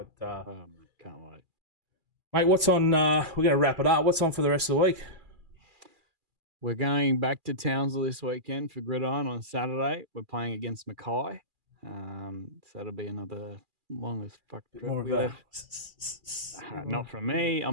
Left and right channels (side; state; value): left; late; 2.4 ms